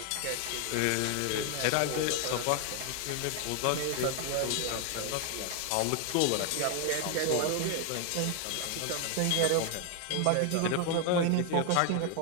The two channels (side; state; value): both; different; correlation 0.01